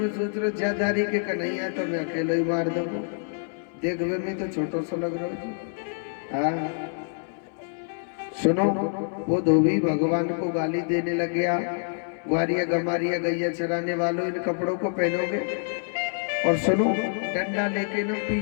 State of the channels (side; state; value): right; silent; 61 dB below the other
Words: सोच रहे ज्यादारी के कन्हैया तो मैं अकेले ही मार दूंगा। देख वे मैं तो छोटो सा लग रहा हूँ। हाँ सुनो, वो धोबी भगवान को गाली देने लग गया। ग्वारिया गमारिया गैया चराने वालों इन कपड़ों को पहनोगे? और सुनो डंडा लेके ना